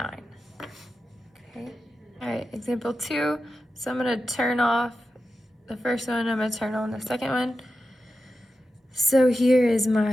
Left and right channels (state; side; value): normal; both; correlation 0.90